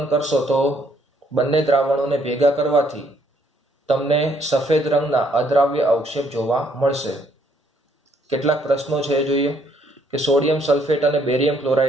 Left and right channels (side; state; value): both; normal; correlation 0.68